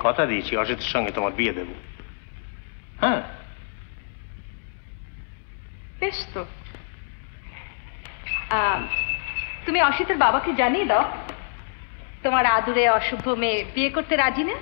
কথা দিয়েছি অসিতের সঙ্গে তোমার বিয়ে দেব। হ্যাঁ, বেশ তো। তুমি অসিতের বাবাকে জানিয়ে দাও তোমার আদুরে অশুভ মেয়ে বিয়ে করতে রাজি না।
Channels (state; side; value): silent; right; digital silence